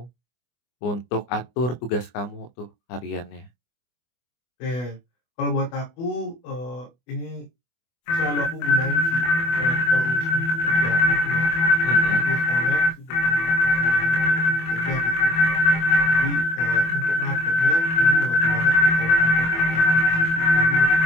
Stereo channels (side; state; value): right; late; 24 ms